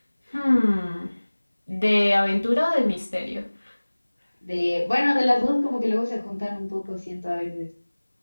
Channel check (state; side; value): inverted; both; correlation -1.00